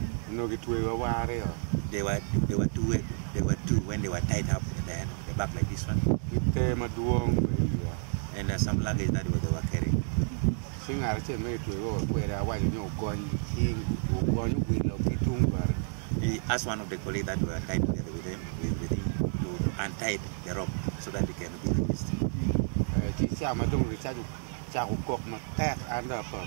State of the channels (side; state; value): left; silent; 58 dB below the other